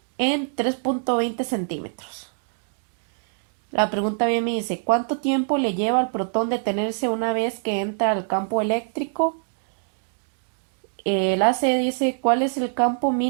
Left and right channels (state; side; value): silent; left; digital silence